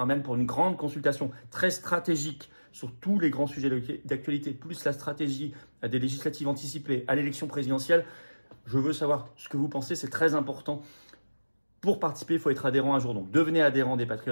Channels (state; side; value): inverted; both; correlation -1.00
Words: un mail pour une grande consultation très stratégique sur tous les grands sujets d'actualité, plus la stratégie à des législatives anticipées, à l'élection présidentielle. Je veux savoir ce que vous pensez, c'est très important. Pour participer, il faut être adhérent à jour. Donc devenez adhérent des